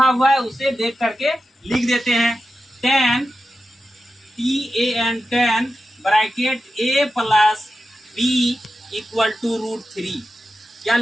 हुआ है उसे देख करके लिख देते हैं। tan tan bracket a plus B equal to √3। क्या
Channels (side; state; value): both; normal; correlation 0.91